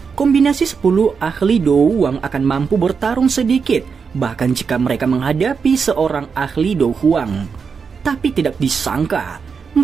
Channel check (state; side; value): quieter; left; 5.7 dB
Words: Kombinasi 10 ahli Douwang akan mampu bertarung sedikit, bahkan jika mereka menghadapi seorang ahli Douwang. Tapi tidak disangka,